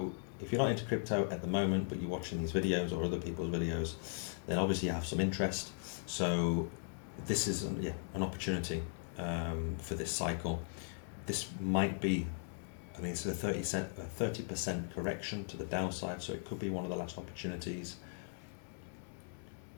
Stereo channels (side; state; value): right; silent; digital silence